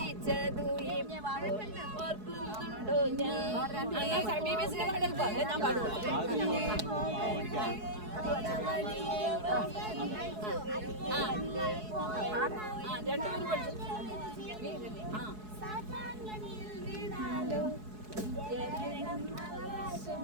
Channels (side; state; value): left; late; 4.7 ms